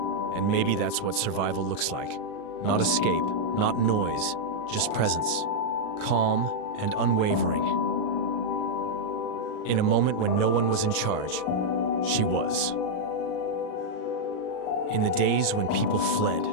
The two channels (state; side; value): late; right; 38 ms